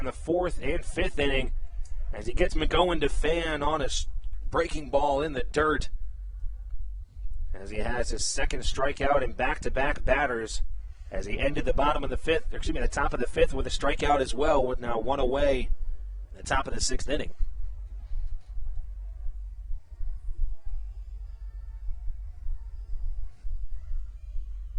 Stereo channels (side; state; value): both; identical; correlation 1.00